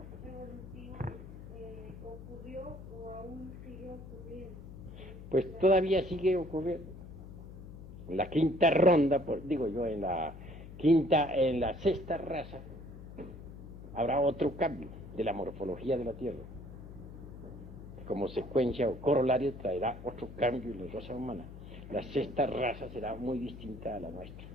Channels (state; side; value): noise; left; hum, 14 dB below the sound